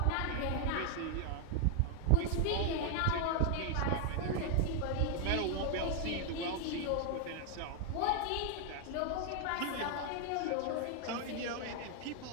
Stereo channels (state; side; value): different; both; correlation 0.00